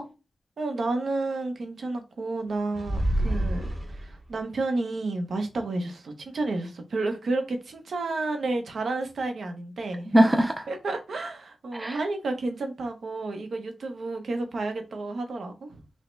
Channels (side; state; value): both; normal; correlation 0.93